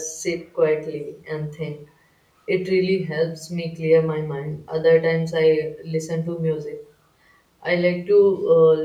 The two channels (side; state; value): both; identical; correlation 1.00